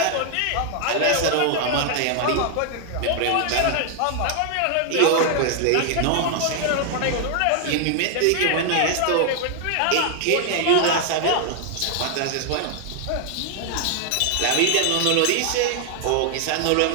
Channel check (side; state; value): both; different; correlation 0.00